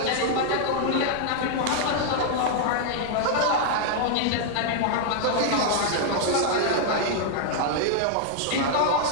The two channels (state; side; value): different; both; correlation -0.01